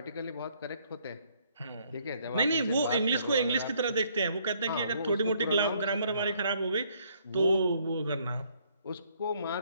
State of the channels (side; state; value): both; inverted; correlation -0.66